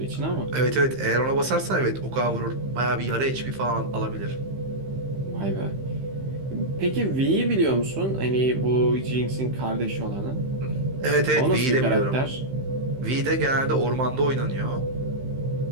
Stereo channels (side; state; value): left; late; 15 ms